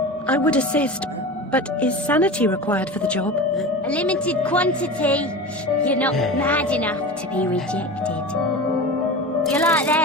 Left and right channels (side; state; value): both; normal; correlation 0.30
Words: I would assist, but is sanity required for the job? A limited quantity. You're not mad enough to be rejected. You're like